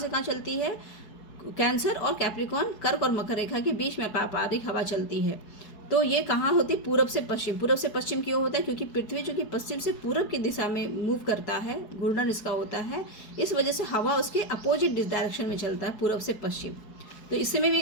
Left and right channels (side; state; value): right; late; 4.7 ms